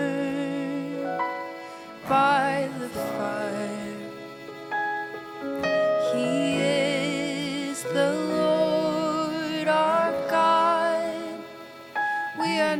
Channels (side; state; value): both; identical; correlation 1.00